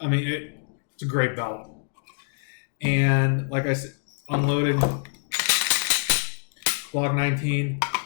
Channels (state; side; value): silent; right; digital silence